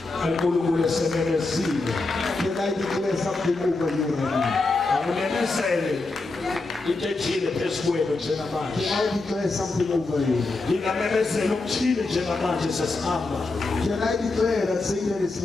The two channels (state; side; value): quieter; right; 3.4 dB